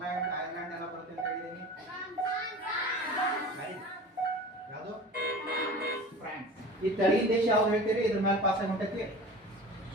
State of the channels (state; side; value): normal; both; correlation 0.38